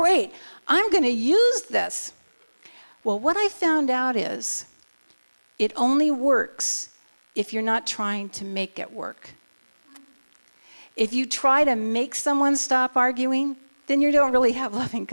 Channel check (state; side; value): inverted; both; correlation -1.00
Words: I'm going to use this. Well, what I found out is it only works if you're not trying to make it work. If you try to make someone stop arguing, then you don't really have loving